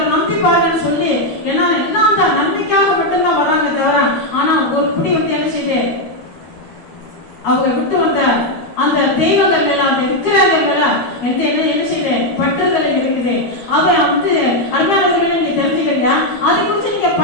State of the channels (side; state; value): right; late; 12 ms